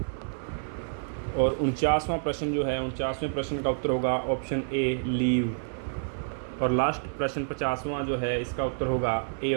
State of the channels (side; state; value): left; silent; 59 dB below the other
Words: और 49वां प्रश्न जो है 49वें प्रश्न का उत्तर होगा ऑप्शन ए लीव। और लास्ट प्रश्न 50वां जो है इसका उत्तर होगा ए